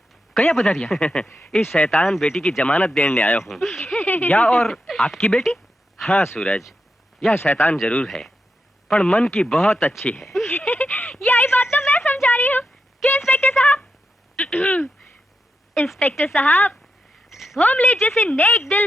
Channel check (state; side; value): normal; both; correlation 0.87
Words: कया पधारिया? इस शैतान बेटी की जमानत देने आया हूँ। या और आपकी बेटी? हाँ सूरज, यह शैतान जरूर है पर मन की बहुत अच्छी है। यही बात तो मैं समझा रही हूँ कि इंस्पेक्टर साहब इंस्पेक्टर साहब, भोमले जैसे नेक दिल